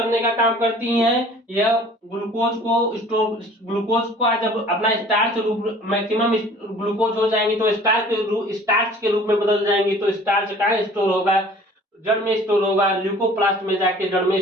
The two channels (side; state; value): both; normal; correlation 0.49